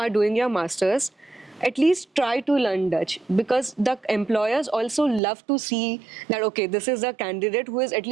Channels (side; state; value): left; drops out; at 5.2 s